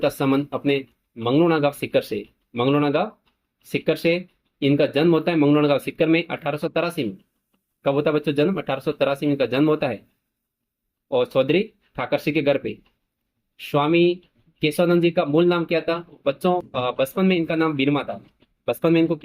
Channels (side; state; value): both; identical; correlation 1.00